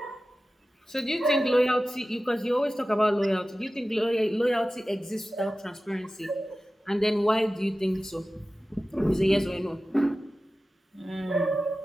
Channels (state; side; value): normal; both; correlation 0.95